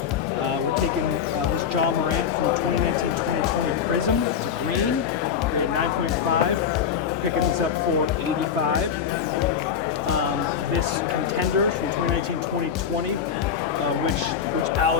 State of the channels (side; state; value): right; quieter; 7.5 dB